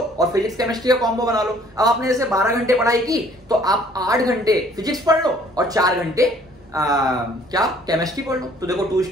फिजिक्स केमिस्ट्री का कॉम्बो बना लो। अब आपने जैसे 12 घंटे पढ़ाई की तो आप 8 घंटे फिजिक्स पढ़ लो और 4 घंटे क्या केमिस्ट्री पढ़ लो। तो देखो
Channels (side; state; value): both; normal; correlation 0.58